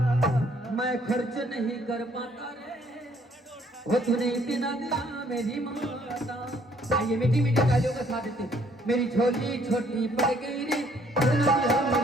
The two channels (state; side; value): normal; both; correlation 0.64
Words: मैं खर्च नहीं कर पाता रे, वो तूने इतना दिया मेरी माता। आइए मीठी मीठी तालियों का साथ देते। मेरी झोली छोटी पड़ गई रे, इतना दिया